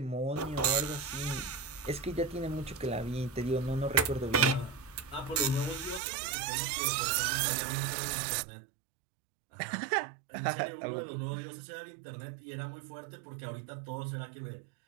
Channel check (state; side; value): drops out; left; at 6.0 s